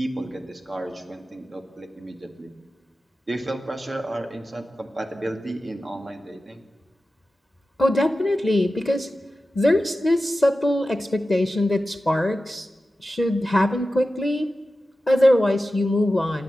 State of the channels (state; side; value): normal; both; correlation 0.93